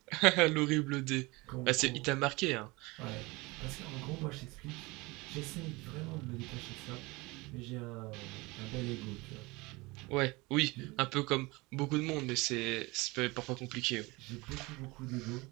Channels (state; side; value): quieter; left; 23.8 dB